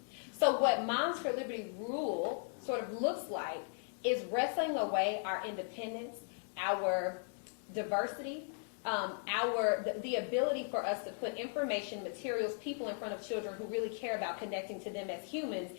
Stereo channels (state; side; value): silent; right; 53 dB below the other